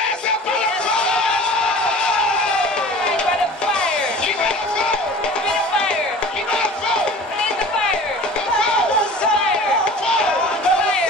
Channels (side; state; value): both; normal; correlation 0.42